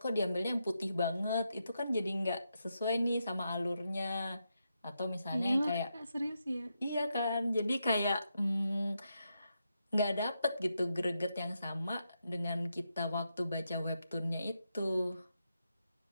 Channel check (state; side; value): inverted; both; correlation -0.84